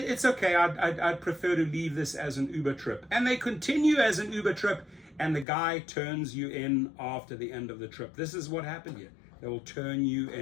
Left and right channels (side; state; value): right; drops out; at 5.5 s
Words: okay. I'd prefer to leave this as an Uber trip. And they continue as an Uber trip, and the guy turns you in after the end of the trip. This is what happened here. They will turn you